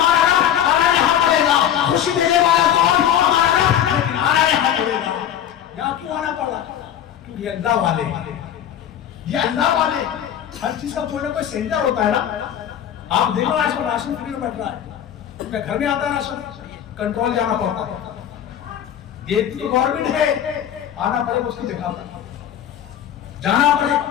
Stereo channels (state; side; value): quieter; right; 10.1 dB